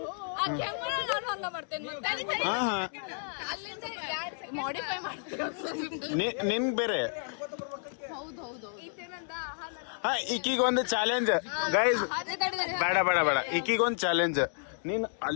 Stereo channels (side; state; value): right; silent; 57 dB below the other